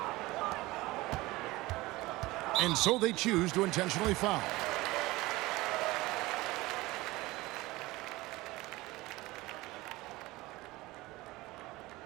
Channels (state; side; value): quieter; left; 20.1 dB